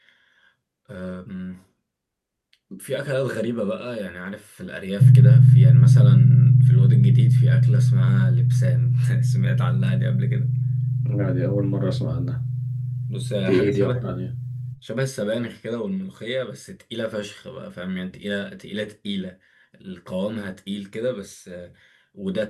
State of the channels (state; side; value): identical; both; correlation 1.00